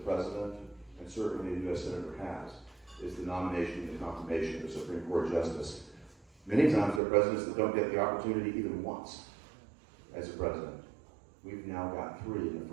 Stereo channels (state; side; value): drops out; left; at 7.0 s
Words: and certainly a U.S. Senator has, is the nomination and confirmation of a Supreme Court justice. Many times there are presidents that don't get the opportunity even once as a president. We've now got 3 in the